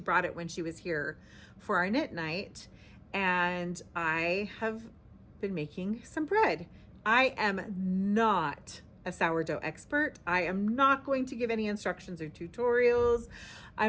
it when she was here for our knit night, and I have been making some bread. I am not a sourdough expert. I am not going to give any instructions or tutorials.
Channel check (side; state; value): both; identical; correlation 1.00